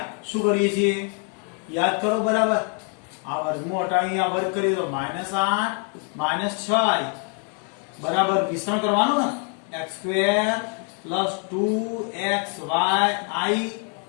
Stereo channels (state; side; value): quieter; right; 39.2 dB